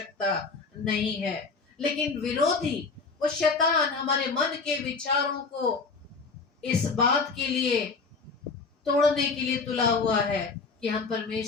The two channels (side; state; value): right; quieter; 4.4 dB